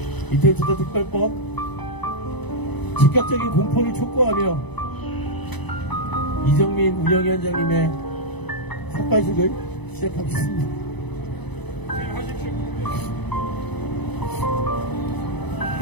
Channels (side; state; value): right; late; 0.99 ms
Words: 이태원 참사특별법 즉각적인 공포를 촉구하며 이정민 운영위원장님의 삭발식을 시작하겠습니다.